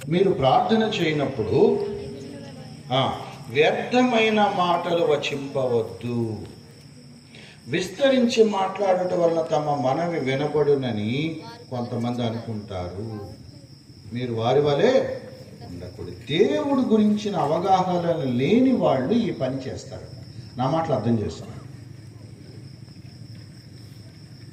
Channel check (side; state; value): both; identical; correlation 1.00